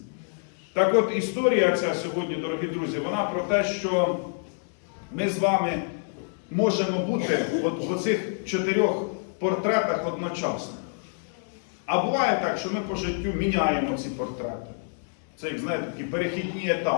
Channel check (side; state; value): right; silent; digital silence